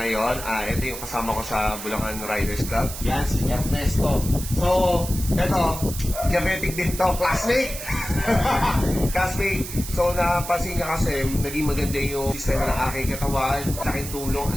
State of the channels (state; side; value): noise; right; hiss, 9 dB below the sound